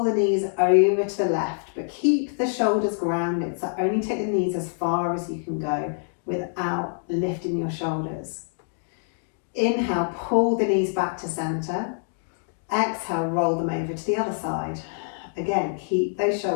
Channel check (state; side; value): silent; right; digital silence